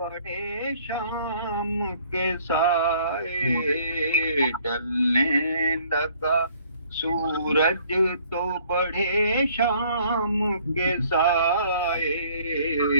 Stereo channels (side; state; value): both; inverted; correlation -0.60